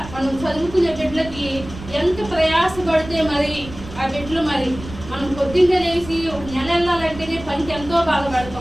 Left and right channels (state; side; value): noise; right; rumble, 14 dB below the sound